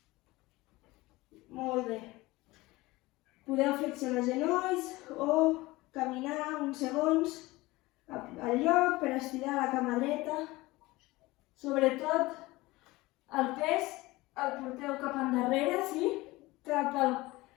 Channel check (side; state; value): right; quieter; 20.3 dB